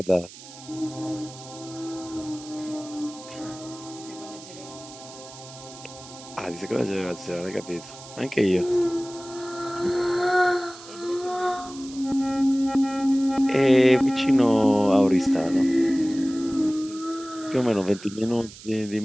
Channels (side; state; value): right; noise; hiss, 17 dB below the sound